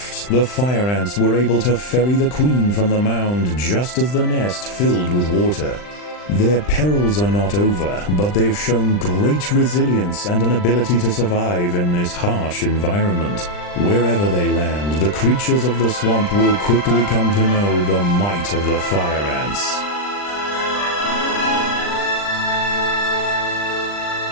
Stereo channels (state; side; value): late; right; 39 ms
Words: the fire ants were able to ferry the queen from the mound just as the nest filled with water. Their perils are not over, but they've shown great resilience and an ability to survive in this harsh environment. Wherever they land, the creatures of the swamp will quickly come to know the might of the fire ants.